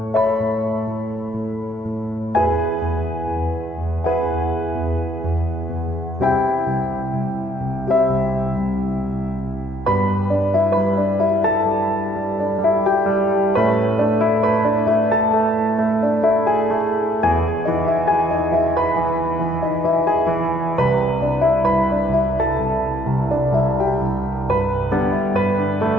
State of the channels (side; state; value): both; normal; correlation 0.66